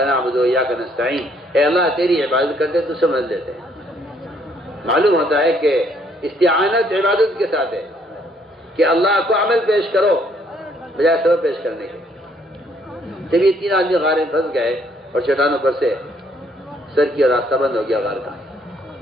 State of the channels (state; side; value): normal; both; correlation 0.67